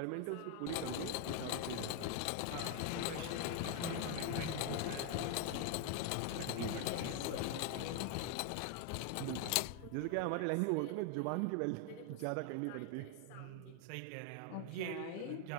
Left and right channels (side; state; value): both; different; correlation 0.00